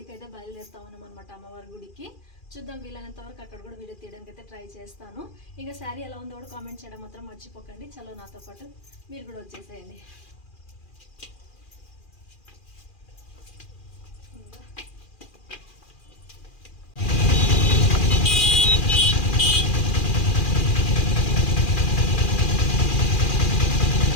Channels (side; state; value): right; late; 2.4 ms